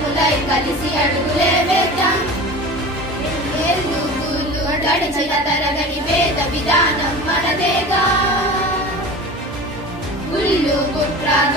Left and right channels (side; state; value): both; normal; correlation 0.35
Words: కలిసి అడుగులే వేద్దాం గడిచిన తరగని వేద విధానం మనదేగా గుళ్ళు కుట్ర